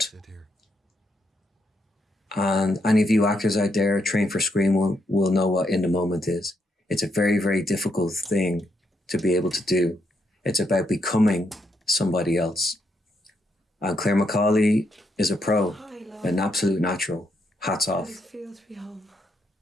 And any of you actors out there trained for screen will know what in the moment is. It's a very, very difficult thing to be able to do. It's about becoming somebody else. And Claire McCauley is a pro, an absolute natural. Hats off. How does it feel to be home?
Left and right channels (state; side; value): normal; both; correlation 0.78